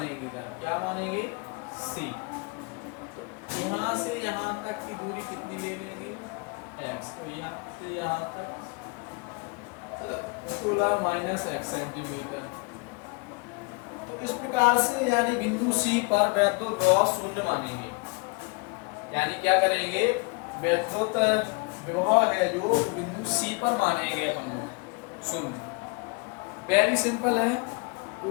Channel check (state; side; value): quieter; right; 30.2 dB